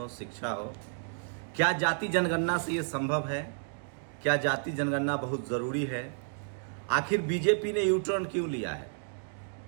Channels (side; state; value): left; silent; digital silence